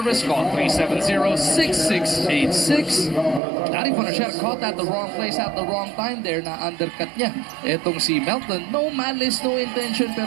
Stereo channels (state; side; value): drops out; left; at 3.4 s